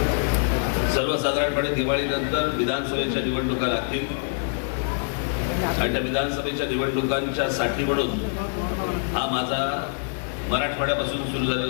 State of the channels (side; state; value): right; silent; 61 dB below the other